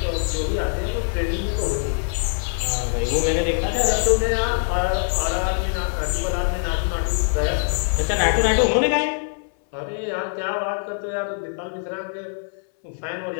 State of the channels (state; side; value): silent; right; 63 dB below the other